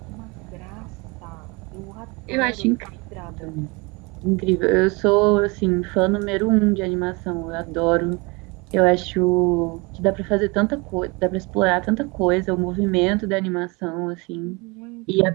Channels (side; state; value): left; quieter; 27.3 dB